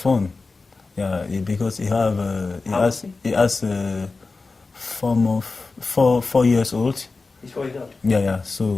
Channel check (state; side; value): quieter; right; 3.9 dB